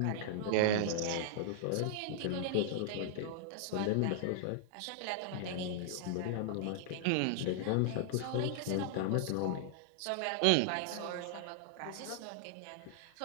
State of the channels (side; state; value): both; different; correlation -0.01